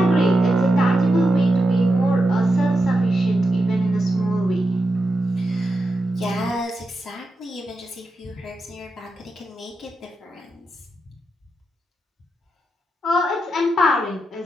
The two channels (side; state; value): both; normal; correlation 0.87